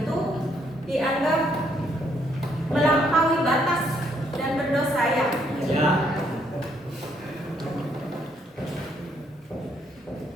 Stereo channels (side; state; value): both; normal; correlation 0.71